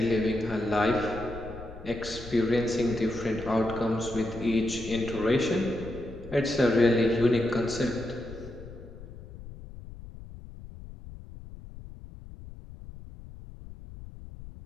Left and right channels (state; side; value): noise; left; rumble, 14 dB below the sound